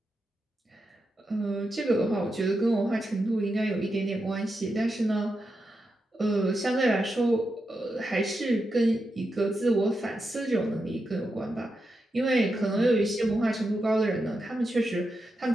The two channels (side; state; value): both; normal; correlation 0.87